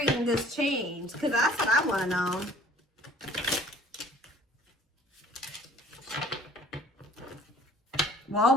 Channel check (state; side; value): normal; both; correlation 0.53